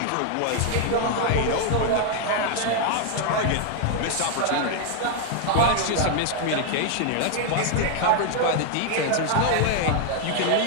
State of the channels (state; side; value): different; both; correlation 0.00